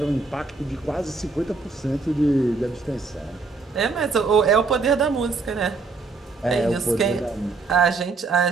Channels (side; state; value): left; quieter; 4.1 dB